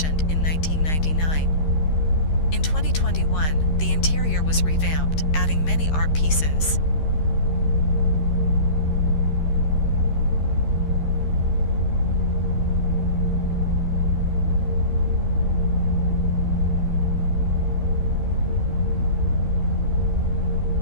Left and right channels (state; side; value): late; right; 13 ms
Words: in 1999. In 2021, the interior was revamped, adding many art pieces.